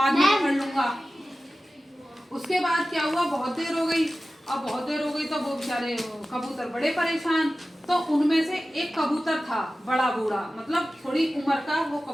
में पकड़ लूंगा। उसके बाद क्या हुआ, बहुत देर हो गई। अब बहुत देर हो गई तो वो बेचारे कबूतर बड़े परेशान। तो उनमें से एक कबूतर था बड़ा बूढ़ा, मतलब थोड़ी उम्र का वो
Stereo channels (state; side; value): normal; both; correlation 0.95